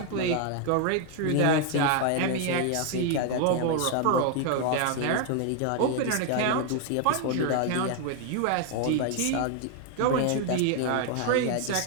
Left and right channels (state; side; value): different; both; correlation 0.01